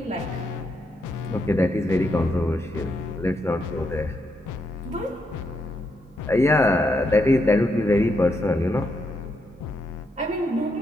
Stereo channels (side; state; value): both; normal; correlation 0.80